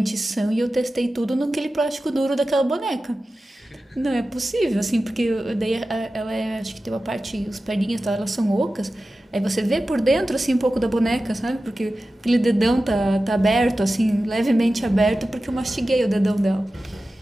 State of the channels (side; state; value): both; normal; correlation 0.94